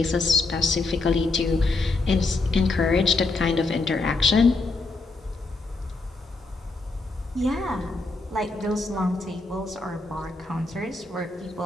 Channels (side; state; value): right; quieter; 3.4 dB